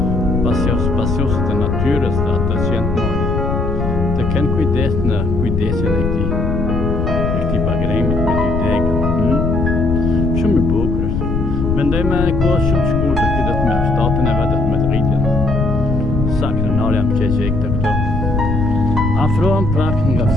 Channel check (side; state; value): left; noise; rumble, 1 dB below the sound